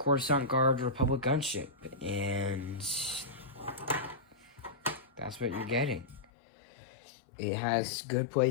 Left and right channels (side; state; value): right; drops out; at 6.2 s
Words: Guard Republic gunship, and that's what you're getting. It has good play